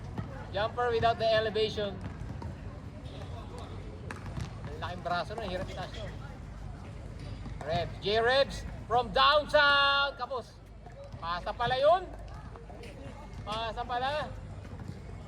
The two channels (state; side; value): identical; both; correlation 1.00